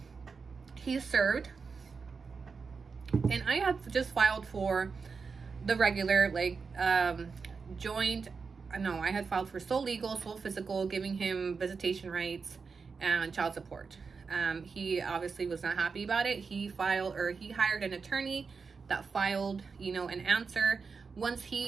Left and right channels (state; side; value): quieter; left; 5.1 dB